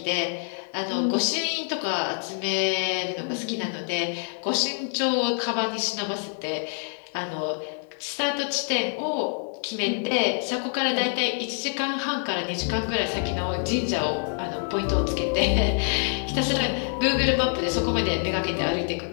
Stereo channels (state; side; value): silent; right; 58 dB below the other